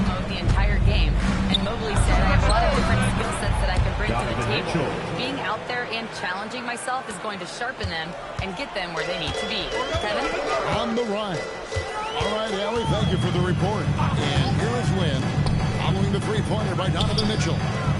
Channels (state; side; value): identical; both; correlation 1.00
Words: mode the entire game. And Mobley said, I have a lot of different skill sets that I can bring to the table. Being out there and challenging myself is going to sharpen them and get them where they need to be. Kevin? On the run. All right, Allie, thank you for the report. And here is Lynn, following the three-pointer by Donovan Mitchell.